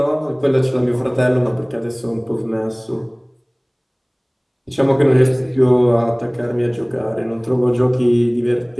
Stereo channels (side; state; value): both; identical; correlation 1.00